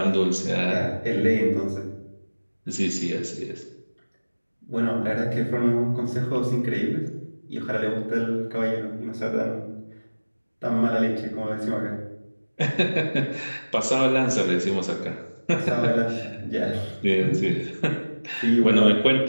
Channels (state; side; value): inverted; both; correlation -1.00